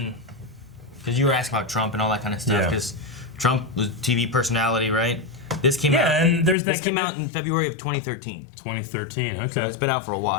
because you were asking about Trump and all that kind of stuff. Yeah. Because Trump was TV personality, right? This came out. Yeah, and there's that This came out in February of 2013. 2013. Okay. So it's been out for a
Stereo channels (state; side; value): drops out; right; at 6.6 s